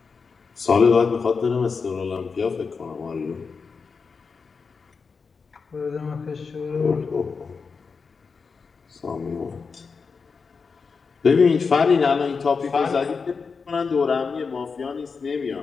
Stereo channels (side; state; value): right; quieter; 5.1 dB